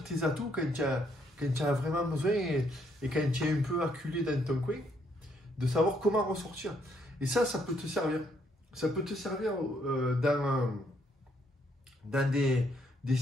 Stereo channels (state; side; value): normal; both; correlation 0.71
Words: tes atouts quand tu as vraiment besoin et quand tu es un peu acculé dans ton coin, de savoir comment ressortir. Et ça peut te servir. Ça peut te servir dans des